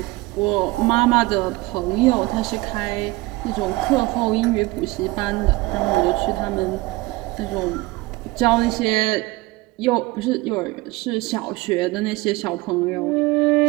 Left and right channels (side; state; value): left; quieter; 21.1 dB